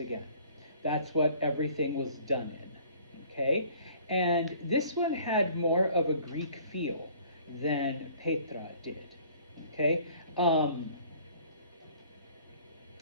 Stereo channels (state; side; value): inverted; both; correlation -0.54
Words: That's what everything was done in, okay? And this one had more of a Greek feel than Petra did, okay?